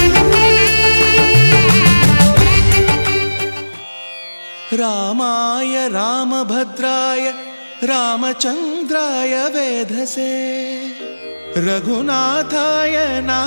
రామాయ రామభద్రాయ రామచంద్రాయ వేధసే రఘునాథాయ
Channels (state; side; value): inverted; both; correlation -1.00